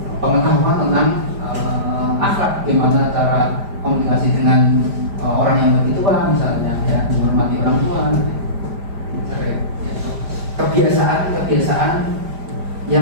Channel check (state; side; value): late; left; 5.0 ms